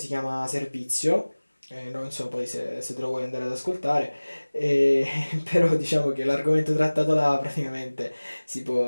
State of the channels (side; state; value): both; inverted; correlation -1.00